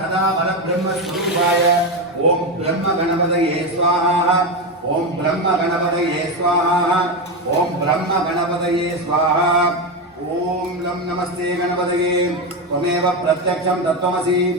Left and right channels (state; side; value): normal; both; correlation 0.13